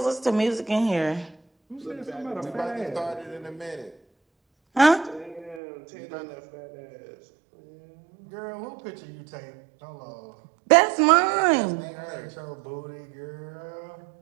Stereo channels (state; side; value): drops out; left; at 5.6 s